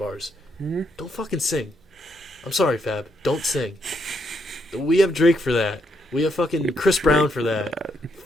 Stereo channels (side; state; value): both; normal; correlation 0.76